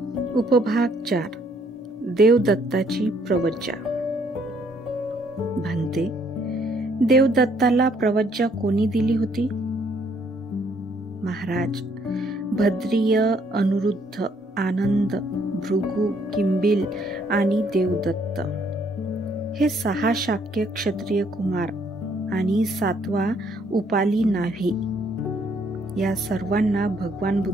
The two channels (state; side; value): normal; both; correlation 0.67